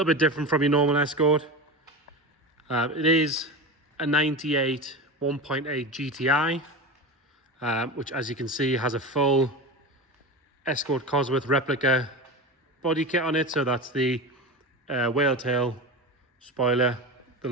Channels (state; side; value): normal; both; correlation 0.25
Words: bit different from your normal Escort. It is a 98 1.8 GTI, which, as you can see, has a full Escort Cosworth replica body kit on it. So that's the whale tail spoiler, the